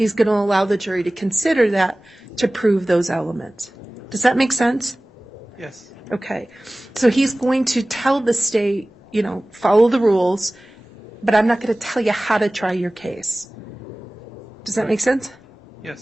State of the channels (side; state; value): both; normal; correlation 0.98